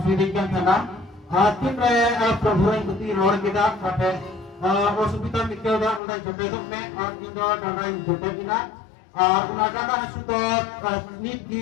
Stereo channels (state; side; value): drops out; right; at 6.0 s